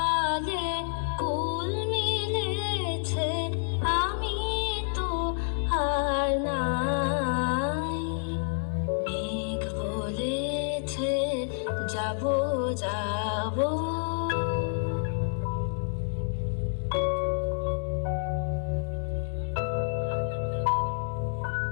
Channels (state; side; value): silent; right; 59 dB below the other